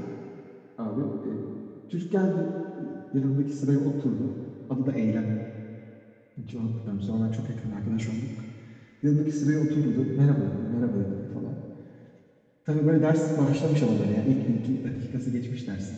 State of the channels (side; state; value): both; identical; correlation 1.00